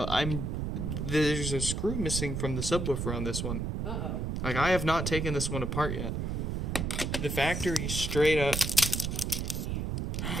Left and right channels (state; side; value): noise; right; rumble, 2 dB below the sound